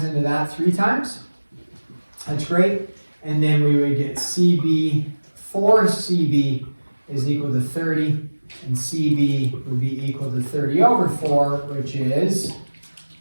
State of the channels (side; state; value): both; inverted; correlation -1.00